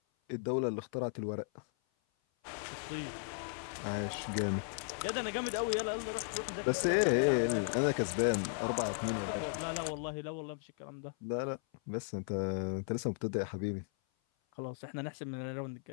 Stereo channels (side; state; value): right; silent; 54 dB below the other